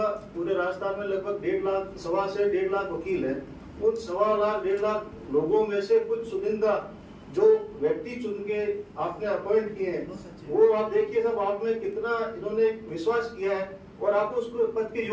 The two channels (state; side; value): identical; both; correlation 1.00